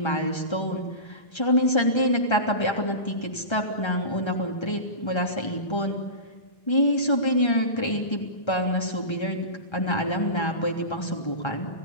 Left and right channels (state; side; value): late; right; 1.3 ms